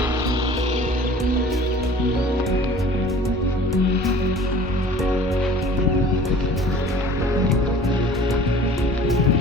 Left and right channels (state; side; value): normal; both; correlation 0.47